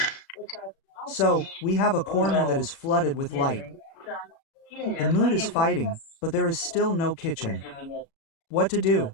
So, we have a corner that is flooded with light. The mood is fighting, but there is still no kitchen. What to do?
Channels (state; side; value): late; right; 36 ms